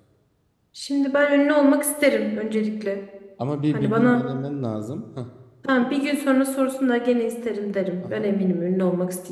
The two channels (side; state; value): both; identical; correlation 1.00